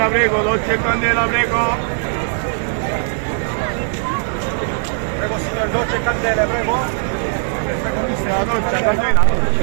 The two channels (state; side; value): silent; left; digital silence